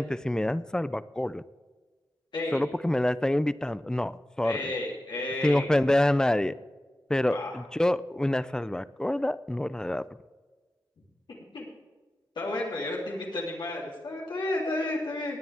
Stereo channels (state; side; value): normal; both; correlation 0.93